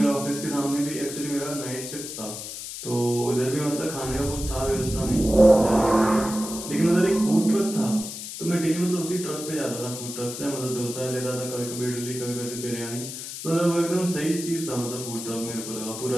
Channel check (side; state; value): left; noise; hiss, 8 dB below the sound